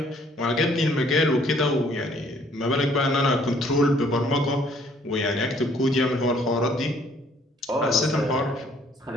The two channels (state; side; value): normal; both; correlation 0.62